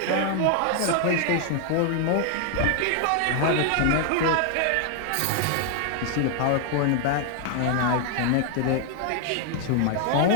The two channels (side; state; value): both; different; correlation 0.00